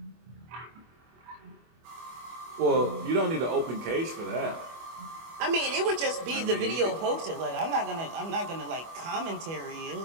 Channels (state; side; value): late; left; 25 ms